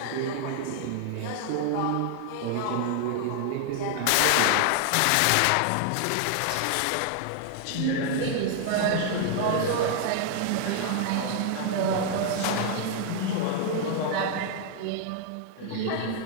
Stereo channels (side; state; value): both; different; correlation 0.00